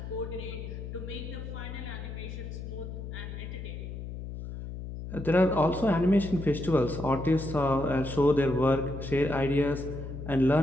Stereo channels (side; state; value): left; noise; hum, 8 dB below the sound